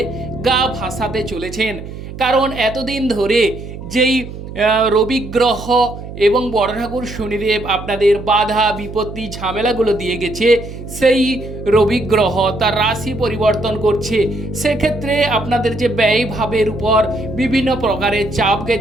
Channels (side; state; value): right; noise; hum, 11 dB below the sound